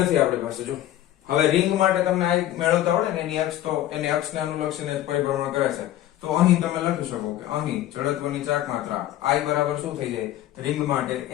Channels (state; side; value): quieter; right; 13.4 dB